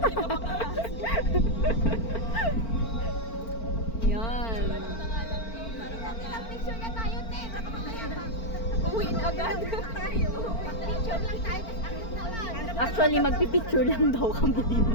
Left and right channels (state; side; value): late; right; 4.4 ms